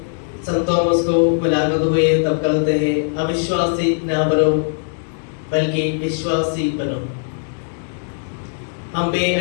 संत थॉमस को मुलाकात हुए तब कहते हैं, अविश्वासी ना बनो बल्कि विश्वासी बनो। हम भी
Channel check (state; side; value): silent; right; digital silence